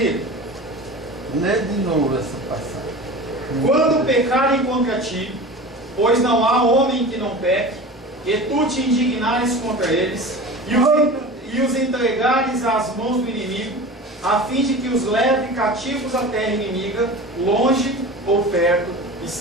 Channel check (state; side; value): normal; both; correlation 0.34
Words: lê de novo essa passagem. Quando pecarem contra ti, pois não há homem que não peque, e tu te indignares contra eles, e os entregares às mãos do inimigo, a fim de que os leve cativos à terra inimiga, longe ou perto